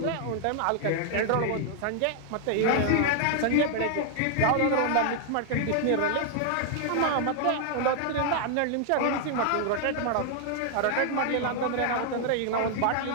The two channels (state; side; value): different; both; correlation 0.00